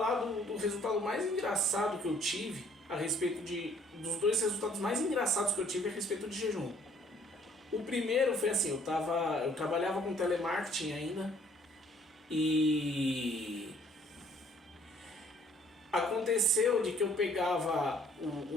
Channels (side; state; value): both; normal; correlation 0.60